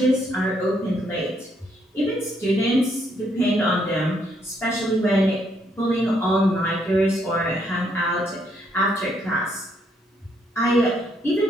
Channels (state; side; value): normal; both; correlation 0.72